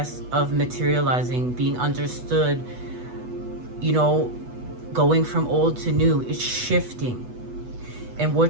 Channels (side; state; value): left; late; 8.1 ms